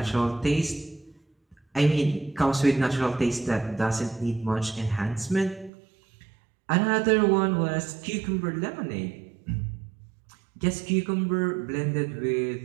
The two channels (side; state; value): left; drops out; at 5.7 s